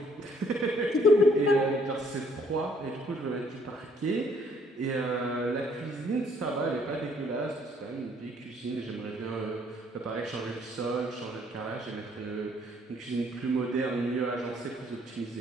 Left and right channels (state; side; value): normal; both; correlation 0.64